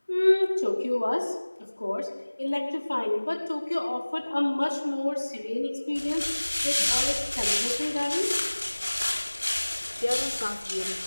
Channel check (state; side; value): inverted; both; correlation -1.00